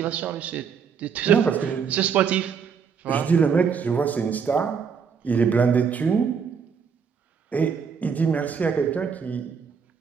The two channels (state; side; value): quieter; left; 6.4 dB